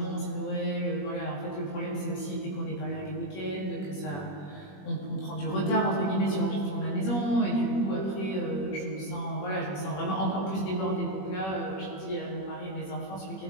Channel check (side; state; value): right; late; 21 ms